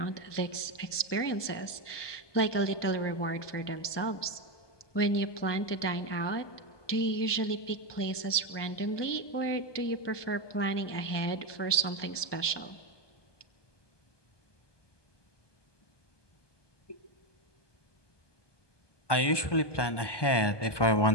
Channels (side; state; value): right; late; 1.2 ms